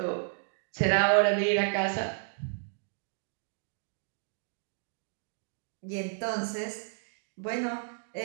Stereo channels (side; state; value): left; silent; digital silence